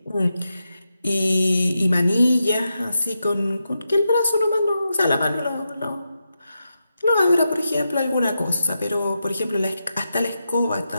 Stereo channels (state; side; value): inverted; both; correlation -0.88